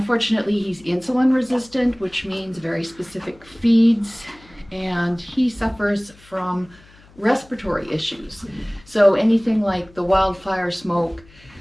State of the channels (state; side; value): noise; left; hum, 26 dB below the sound